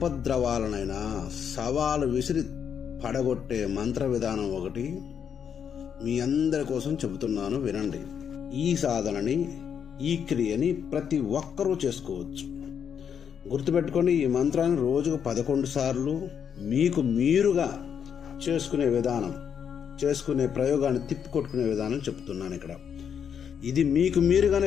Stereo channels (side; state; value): right; quieter; 7.8 dB